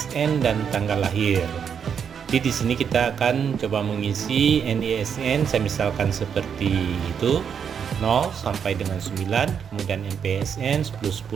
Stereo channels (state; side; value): quieter; left; 7.4 dB